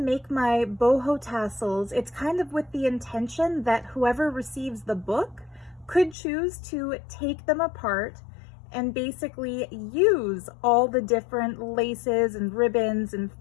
my boho tassels, it's kind of with the intention that whoever receives the book could choose to take them apart and basically use all the different laces and ribbons and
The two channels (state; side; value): drops out; right; at 6.2 s